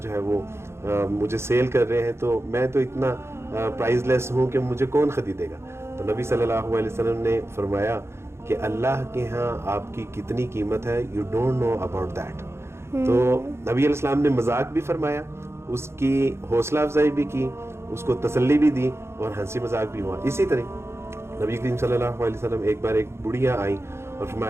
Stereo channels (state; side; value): late; left; 0.13 ms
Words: ہے وہ مجھے سیل کر رہے ہیں تو میں تو اتنا پرائز لیس ہوں کہ مجھے کون خریدے گا. تو نبی صلی اللہ علیہ وسلم نے فرمایا کہ اللہ کے ہاں آپ کی کتنی قیمت ہے، you don't know about that. تو نبی علیہ السلام نے مذاق بھی فرمایا، اس کی حوصلہ افزائی بھی کی، اس کو تسلی بھی دی اور ہنسی مذاق بھی ہوا. اسی طرح نبی کریم صلی اللہ علیہ وسلم ایک بار ایک بڑھیا آئیں اور